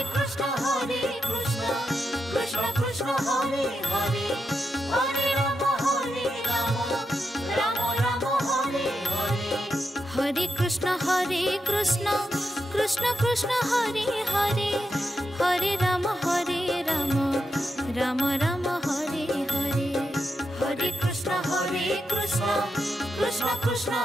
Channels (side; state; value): both; normal; correlation 0.86